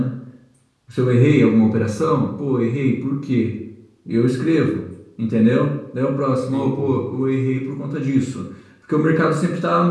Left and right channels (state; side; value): identical; both; correlation 1.00